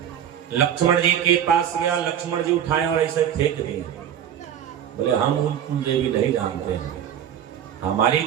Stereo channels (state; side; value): quieter; left; 9.6 dB